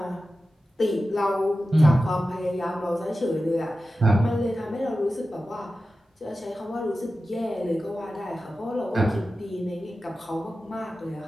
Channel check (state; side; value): normal; both; correlation 0.93